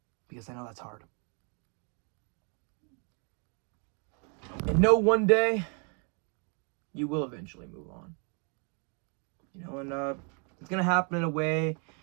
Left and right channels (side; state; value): left; quieter; 37.5 dB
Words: Because I know that's hard. And know one day you will eventually move on. And it's going to happen in a way